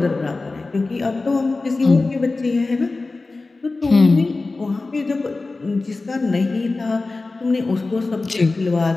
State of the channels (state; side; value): quieter; right; 3.5 dB